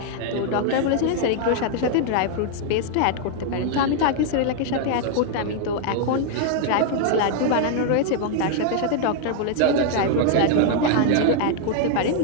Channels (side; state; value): both; different; correlation 0.00